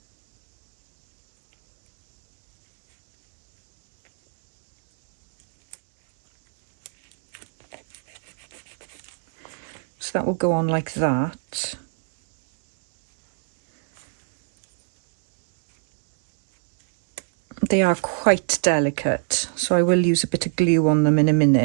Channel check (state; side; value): silent; left; 65 dB below the other